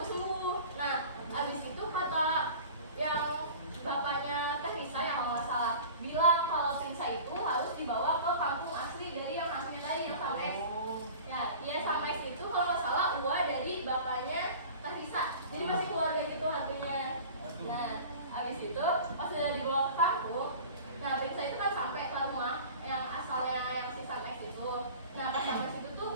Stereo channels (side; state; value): both; inverted; correlation -0.40